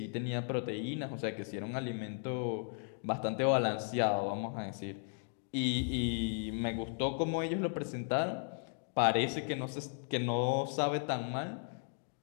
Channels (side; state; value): right; silent; 54 dB below the other